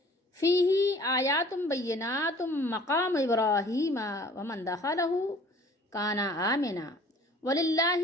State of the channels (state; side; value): normal; both; correlation 0.51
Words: فیہ آیات بینات مقام ابراہیم ومن دخلہ کان آمنا وللہ